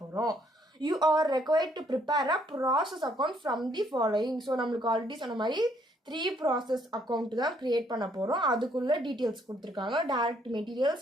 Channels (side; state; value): both; normal; correlation 0.68